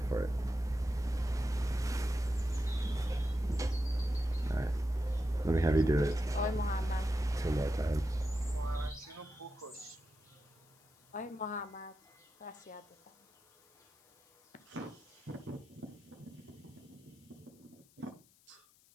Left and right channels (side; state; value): left; noise; hiss, 29 dB below the sound